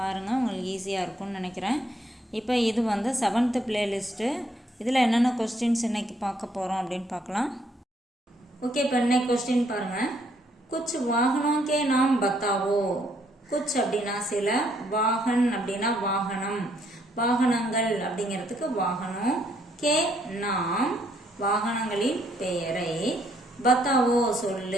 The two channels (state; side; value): normal; both; correlation 0.70